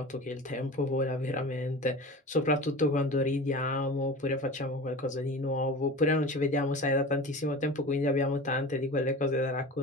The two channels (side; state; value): both; normal; correlation 0.35